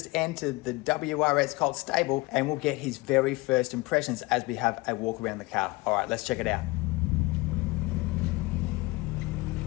entered the WRX Cult stable, and we'll get his very first impressions as we have a walk around the car. All right, let's check it out.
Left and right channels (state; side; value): quieter; right; 23.0 dB